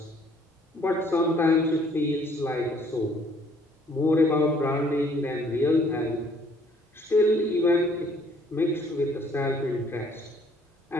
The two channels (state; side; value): normal; both; correlation 0.61